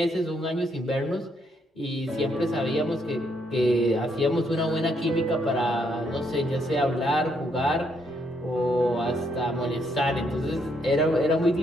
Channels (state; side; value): normal; both; correlation 0.74